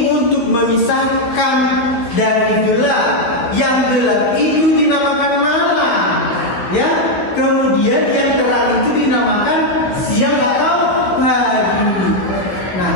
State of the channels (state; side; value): late; right; 16 ms